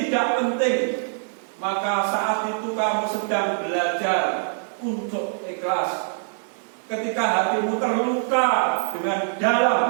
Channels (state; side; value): silent; left; digital silence